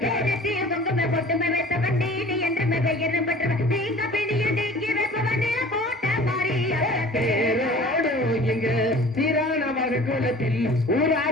குங்குமை பொட்டுமை வைத்தவன் நீலி என்று பெயரும் பெற்றவன். நீங்க பிணிய நீக்கி வைப்பவன் போட்ட மாறிய தேரோடு எங்க சீரான குலத்தில்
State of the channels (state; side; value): normal; both; correlation 0.45